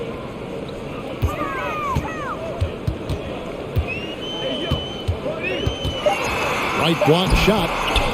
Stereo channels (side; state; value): both; identical; correlation 1.00